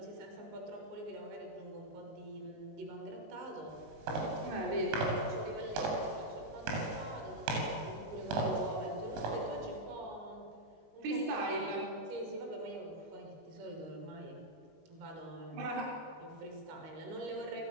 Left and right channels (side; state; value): left; late; 19 ms